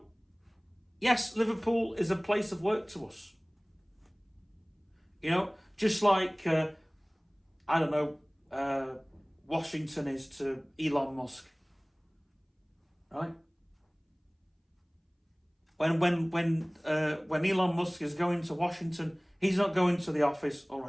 yes, Liverpool is a place of work to us. Just like, Washington is to Elon Musk, right? When Elon Musk is going to Washington, he's not going to the office, all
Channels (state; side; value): identical; both; correlation 1.00